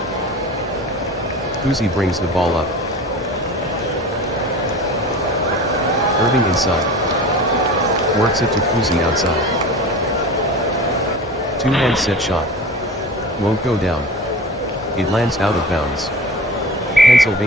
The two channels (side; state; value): both; normal; correlation 0.36